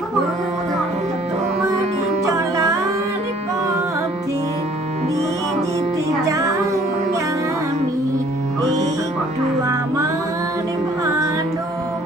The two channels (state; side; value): normal; both; correlation 0.57